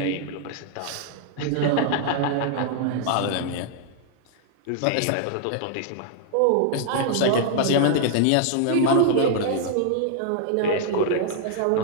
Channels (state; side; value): different; both; correlation -0.01